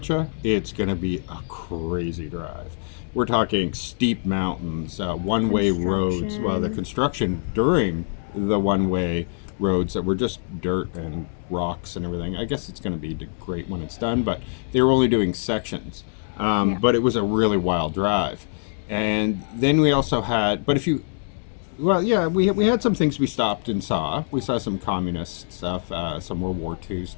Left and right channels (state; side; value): silent; right; 63 dB below the other